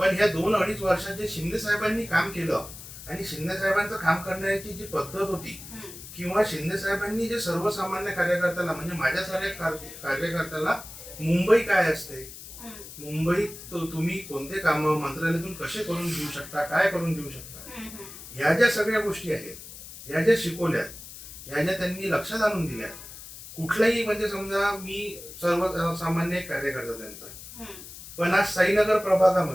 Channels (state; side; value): noise; left; hiss, 14 dB below the sound